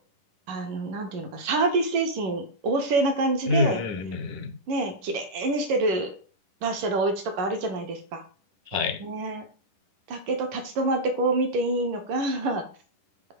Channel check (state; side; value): late; left; 10 ms